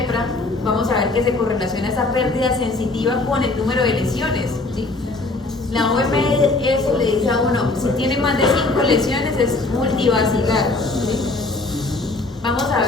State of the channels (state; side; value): quieter; right; 3.2 dB